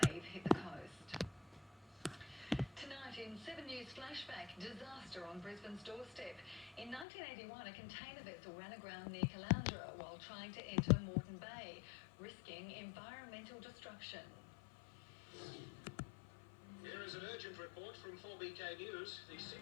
hit the coast. Tonight in 7 News Flashback, disaster on Brisbane's doorstep. In 1981, a container vessel ran aground near Caloundra while trying to enter Moreton Bay, risking environmental destruction. Here is an urgent report from 4BK News. The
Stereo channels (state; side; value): drops out; right; at 7.1 s